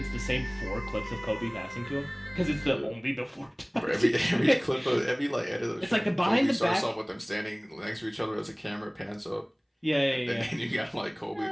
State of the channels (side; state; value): both; identical; correlation 1.00